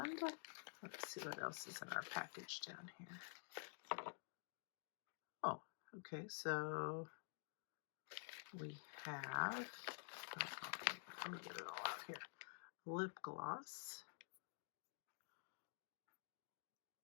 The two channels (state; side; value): silent; right; digital silence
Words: let's see what else is in our package down here. Oh, okay, so we have, let me get it all out here. Lip gloss.